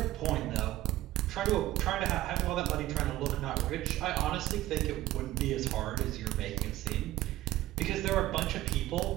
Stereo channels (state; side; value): quieter; left; 15.6 dB